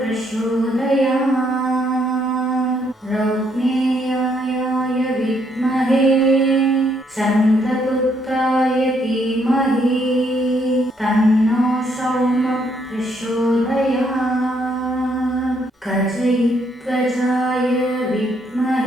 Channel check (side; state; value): both; normal; correlation 0.72